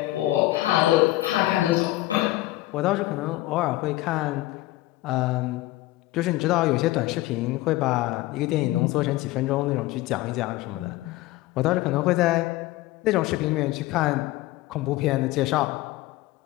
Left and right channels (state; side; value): quieter; right; 17.8 dB